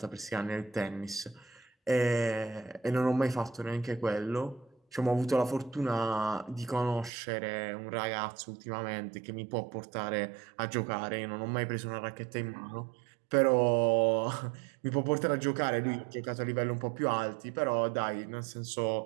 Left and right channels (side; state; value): left; drops out; at 7.1 s